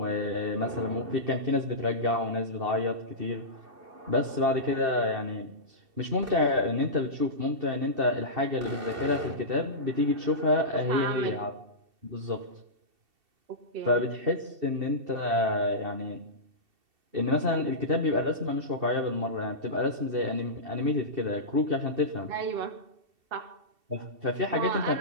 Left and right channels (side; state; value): left; late; 2.7 ms